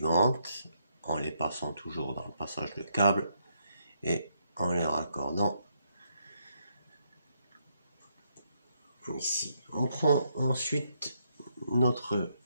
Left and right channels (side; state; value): both; inverted; correlation -0.76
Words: en les passant toujours dans le passage de câble et en les raccordant ici. On prend ensuite notre